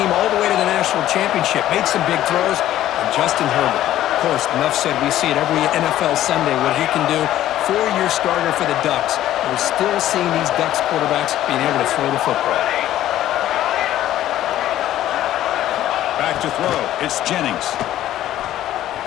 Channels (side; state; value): right; quieter; 13.1 dB